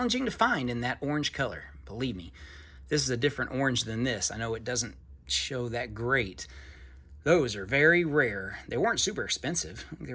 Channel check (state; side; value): identical; both; correlation 1.00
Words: to find in that orange color. Believe me, this is a different orange than this. I know it doesn't show that great. Those are very rare. They weren't super expensive. They